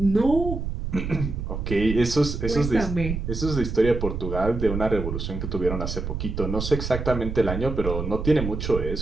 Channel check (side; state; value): right; noise; rumble, 4 dB below the sound